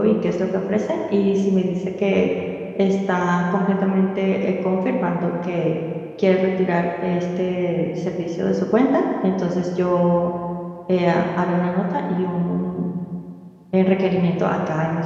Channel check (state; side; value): identical; both; correlation 1.00